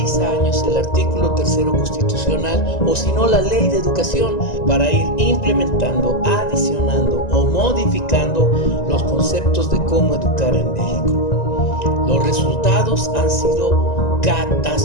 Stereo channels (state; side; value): late; right; 1.9 ms